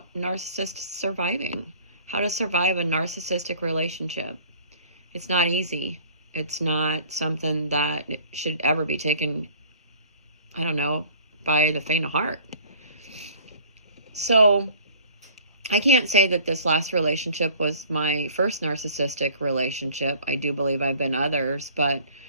narcissist surviving, how to survive a narcissistic relationship. It's not easy. It's not something that should ever be taken, I don't know, by the faint of heart. So, I can't say that this last relationship was my first narcissistic relationship. I do believe I've been others, but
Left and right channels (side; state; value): both; inverted; correlation -0.51